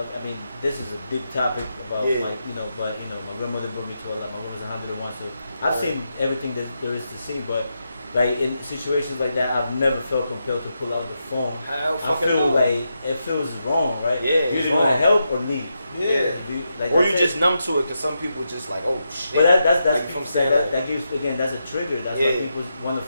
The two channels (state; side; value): inverted; both; correlation -0.85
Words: I mean, this is a big topic about Yeah. like but my grandmother brought me to a lot. My grandma's 101, so I've Right. seen everything that there is to see. But like in situations like that, I've never felt compelled to pull out the phone. Hell I fucking feel no. like it feels wrong, right? Yeah, You it's either want to wrong. help or need. Yeah. Like, Or that's you it. just numb to it because some people just like, oh shit. But that's like, you know what I'm saying? that gives again, that's a trigger. That's why Yeah. people want to